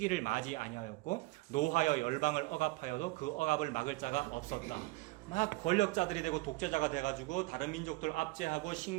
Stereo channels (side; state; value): left; quieter; 22.0 dB